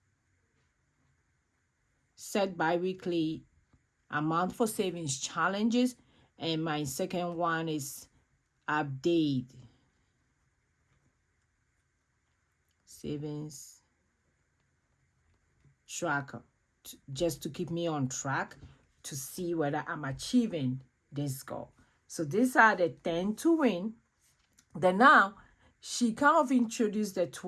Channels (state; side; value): identical; both; correlation 1.00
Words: set bi-weekly amount for savings challenges. And my second one is update savings tracker, just to keep me on track to see whether I'm achieving this goal. So these are the 10 to win. Then now she kind of introduced the